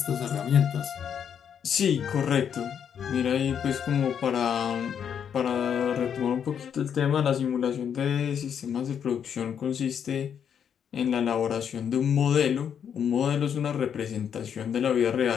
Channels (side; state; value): right; quieter; 8.1 dB